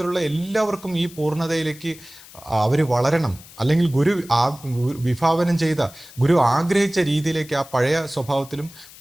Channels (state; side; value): noise; left; hiss, 20 dB below the sound